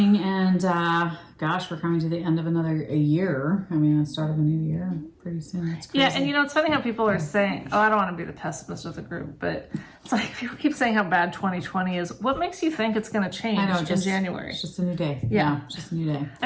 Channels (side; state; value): both; identical; correlation 1.00